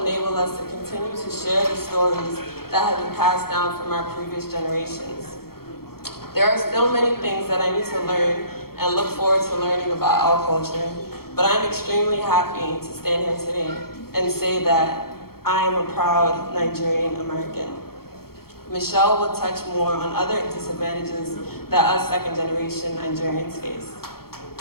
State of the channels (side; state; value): right; late; 0.94 ms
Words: enable us to continue to share the stories that have been passed down from our previous generations. There are still many things that I need to learn and look forward to learning about our culture, but I'm extremely happy to stand here today and say that I am a proud Nigerian American. Michelle will touch more on other disadvantages that us second-generation Nigerians face.